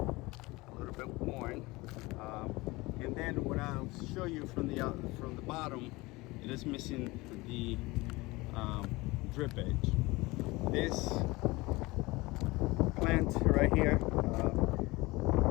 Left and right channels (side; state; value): right; quieter; 22.1 dB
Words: a little bit worn. And then what I'll show you from the bottom, it is missing the drip edge. This plant right here